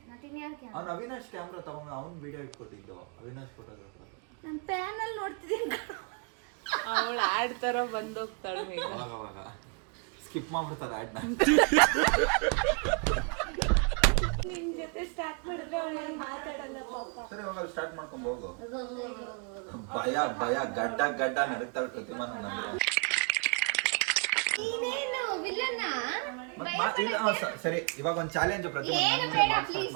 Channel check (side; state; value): left; quieter; 38.1 dB